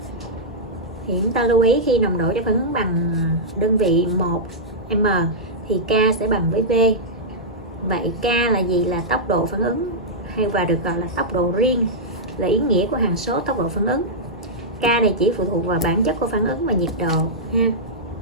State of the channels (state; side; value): normal; both; correlation -0.09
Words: Thì chúng ta lưu ý khi nồng độ cho phản ứng bằng đơn vị 1m thì K sẽ bằng với V. Vậy K là gì? Là tốc độ phản ứng hay và được gọi là tốc độ riêng, là ý nghĩa của hằng số tốc độ phản ứng. K này chỉ phụ thuộc vào bản chất của phản ứng và nhiệt độ ha.